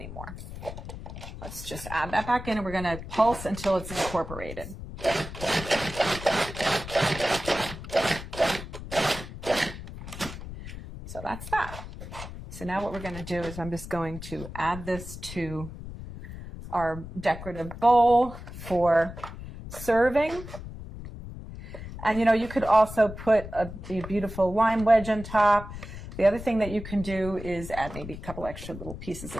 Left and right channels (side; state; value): left; noise; rumble, 11 dB below the sound